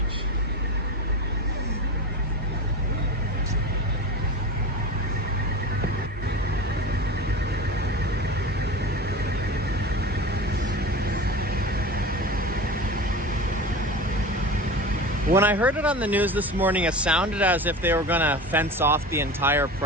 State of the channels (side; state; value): both; normal; correlation 0.30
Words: When I heard it on the news this morning, it sounded as if they were gonna fence off the entire